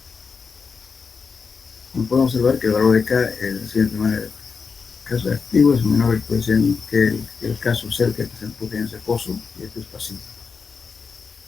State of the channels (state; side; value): quieter; right; 5.3 dB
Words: podemos observar que el valor de K es de la siguiente manera. El caso activo es menor el coeficiente que el caso cerca que se empuje en ese pozo, y esto es pasivo.